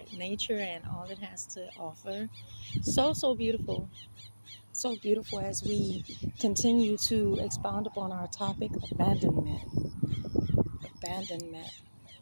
and all it has to offer. So beautiful. So beautiful as we continue to expound upon our topic, abandonment. Abandonment.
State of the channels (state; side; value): inverted; both; correlation -1.00